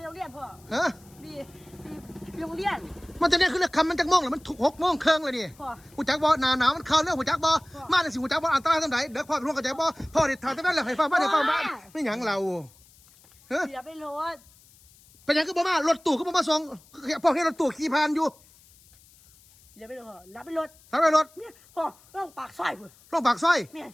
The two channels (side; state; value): left; noise; hiss, 27 dB below the sound